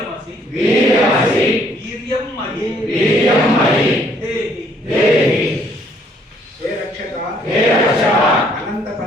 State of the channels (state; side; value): normal; both; correlation 0.65